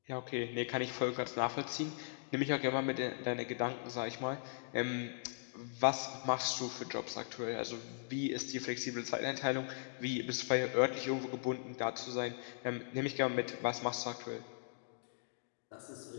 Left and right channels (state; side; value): silent; right; digital silence